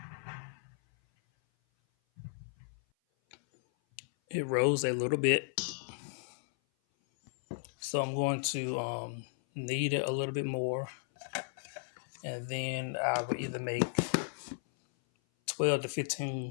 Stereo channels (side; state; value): right; silent; 55 dB below the other